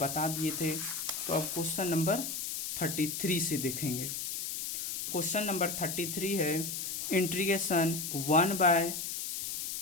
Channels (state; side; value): noise; left; hiss, 3 dB below the sound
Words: दिए थे। तो अब क्वेश्चन नंबर 33 से देखेंगे। क्वेश्चन नंबर 33 है इंटीग्रेशन